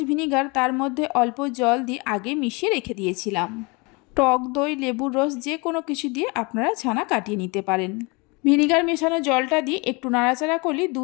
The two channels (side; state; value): right; quieter; 28.2 dB